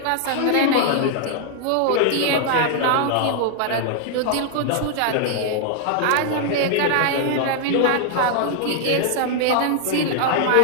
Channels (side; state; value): both; different; correlation 0.00